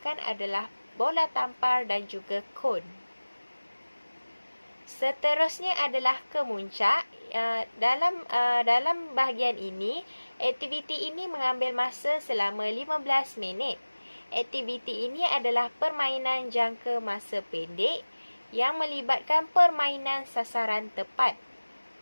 adalah bola tampar dan juga kon. Seterusnya adalah kemuncak. Dalam bahagian ini, aktiviti ini mengambil masa selama 15 minit. Aktiviti ini adalah permainan jangka masa pendek yang melibatkan permainan sasaran tepat.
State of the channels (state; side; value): inverted; both; correlation -1.00